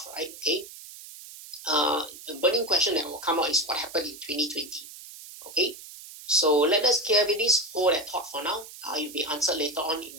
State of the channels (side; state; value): right; noise; hiss, 15 dB below the sound